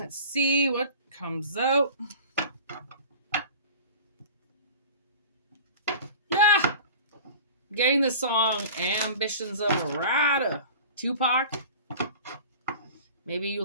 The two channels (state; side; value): inverted; both; correlation -0.40